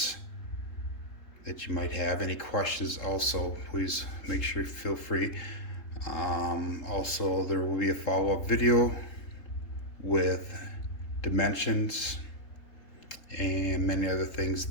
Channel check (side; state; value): right; late; 3.8 ms